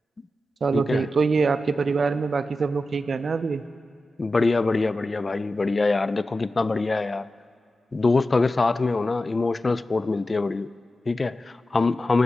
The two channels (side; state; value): both; normal; correlation 0.92